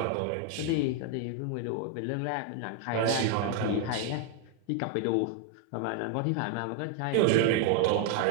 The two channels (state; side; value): different; both; correlation 0.00